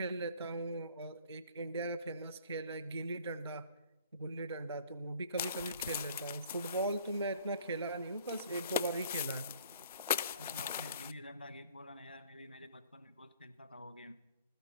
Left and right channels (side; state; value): both; inverted; correlation -0.53